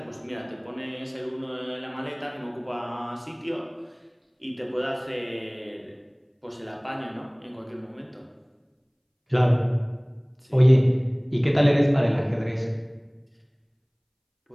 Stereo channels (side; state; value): both; identical; correlation 1.00